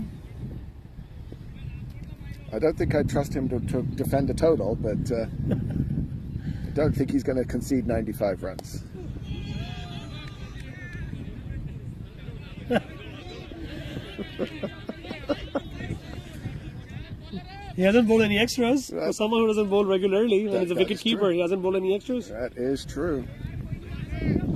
I don't think I'd trust him to defend a total, but I don't think he's going to concede 95 runs. He hasn't bowled any extras. For someone who doesn't bowl regularly, and he's a wicket keeper, he hasn't bowled any extras. That is true.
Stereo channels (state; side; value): identical; both; correlation 1.00